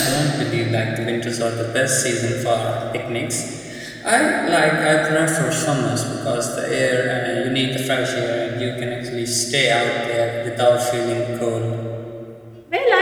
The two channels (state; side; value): identical; both; correlation 1.00